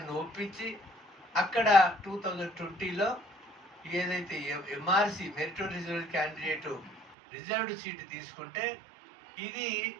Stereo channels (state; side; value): drops out; left; at 7.2 s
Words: ఒప్పించి అక్కడ 2020లో ఏదైతే MRC meritorious candidate reserved seat తీసుకుంటే ఇది